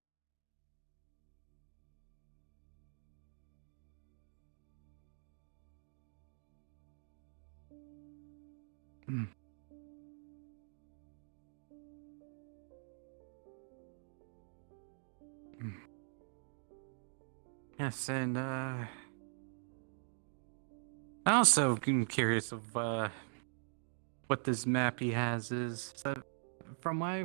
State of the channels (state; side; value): silent; left; digital silence